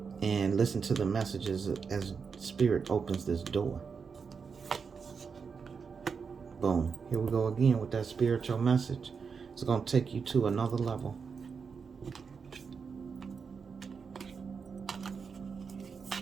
and listen to the messages as Spirit opens this door. Boom. Here we go again with that spiritual message. It's going to take you to another level.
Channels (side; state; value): left; quieter; 5.7 dB